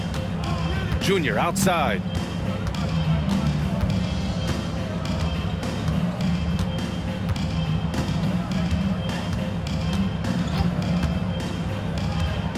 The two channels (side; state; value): both; identical; correlation 1.00